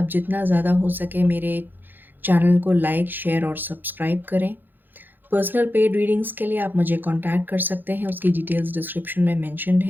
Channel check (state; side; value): late; left; 0.091 ms